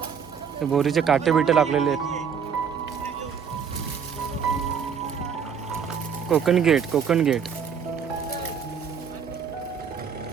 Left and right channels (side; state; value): left; quieter; 7.0 dB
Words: बोरीचे काटे बिटे लागलेले आहेत. कोकण गेट, कोकण गेट.